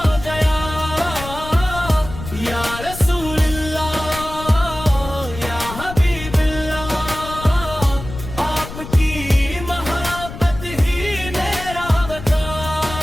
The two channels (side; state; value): left; noise; rumble, 11 dB below the sound